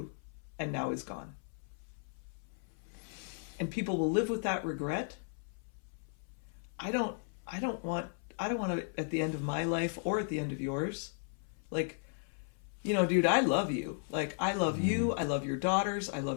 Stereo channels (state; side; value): silent; right; 54 dB below the other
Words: and now is gone. And people will live with that regret. I don't want to, at the end of my life or at the end of yours, like, you know, dude, I love you. Like, I love you. I love your daughters. I